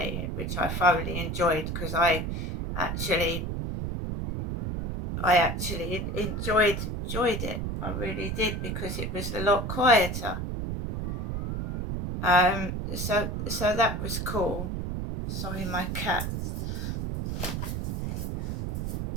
which I thoroughly enjoyed, because I actually enjoyed it. I really did, because it was a lot quieter. So that was cool. Sorry, my cat.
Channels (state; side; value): noise; right; rumble, 3 dB below the sound